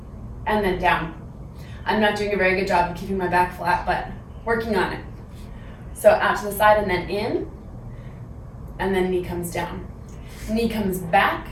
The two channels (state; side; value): identical; both; correlation 1.00